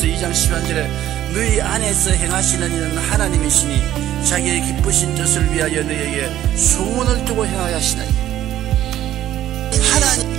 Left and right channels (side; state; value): left; quieter; 12.6 dB